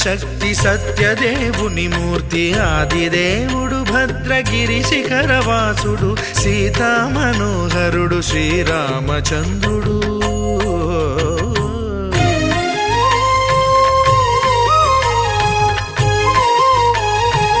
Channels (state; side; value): identical; both; correlation 1.00